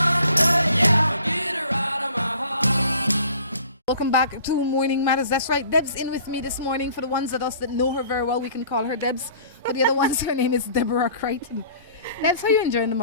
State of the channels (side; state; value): both; inverted; correlation -0.51